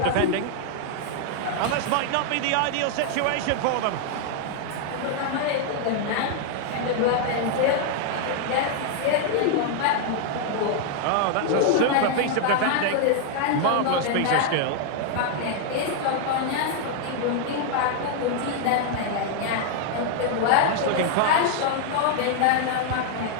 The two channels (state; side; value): different; both; correlation 0.00